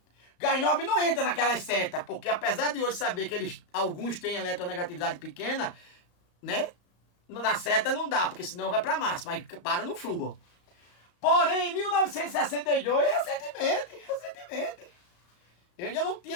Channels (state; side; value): late; right; 35 ms